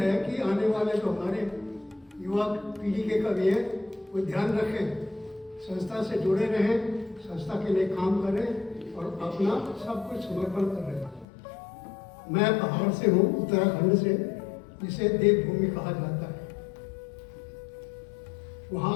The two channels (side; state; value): right; drops out; at 11.2 s